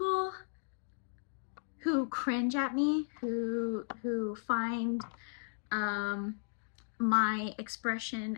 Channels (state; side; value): silent; right; digital silence